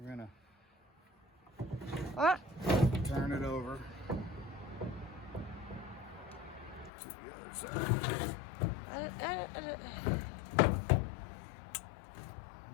gonna turn it over to the other side.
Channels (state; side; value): drops out; right; at 6.9 s